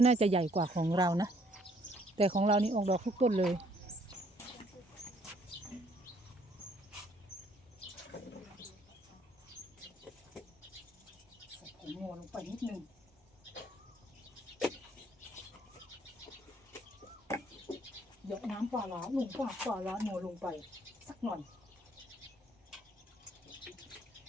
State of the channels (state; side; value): normal; both; correlation 0.64